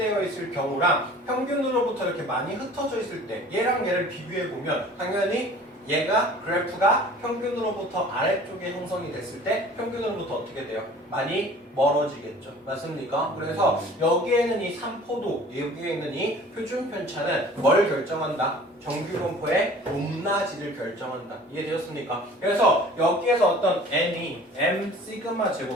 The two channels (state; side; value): normal; both; correlation 0.47